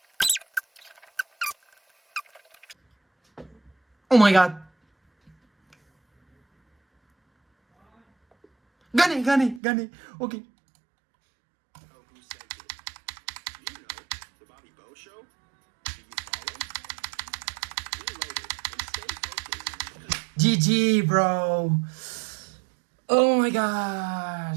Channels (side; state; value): left; drops out; at 9.6 s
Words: Oh my god. Gane. Ok. GG, bro. Oh my